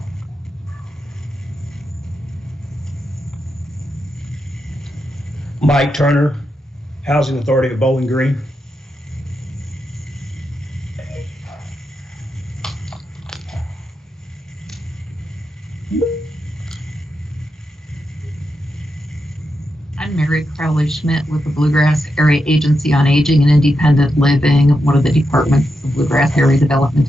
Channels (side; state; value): both; normal; correlation 0.86